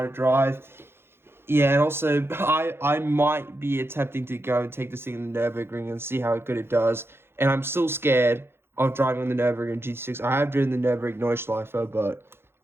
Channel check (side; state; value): left; late; 0.11 ms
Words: to drive. Yeah, and also, I might be attempting to go and take this thing in the Nürburgring and see how good it does. And I'm still scared of driving on the Nürburgring GT6. I have driven the Nürburgring Neuschleifer, but